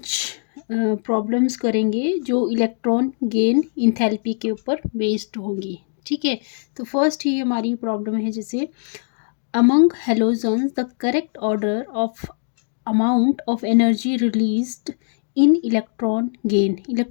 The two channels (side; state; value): right; silent; digital silence